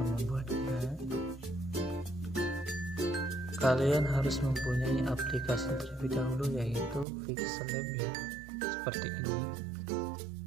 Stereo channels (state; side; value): drops out; left; at 7.1 s